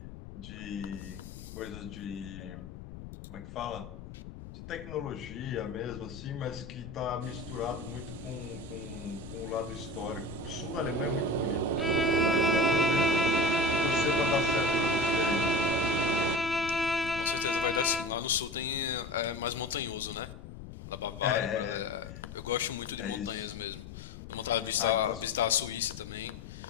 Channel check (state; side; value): noise; left; rumble, 12 dB below the sound